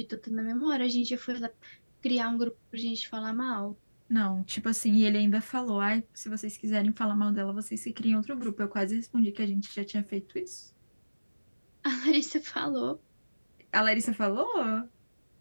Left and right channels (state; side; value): inverted; both; correlation -1.00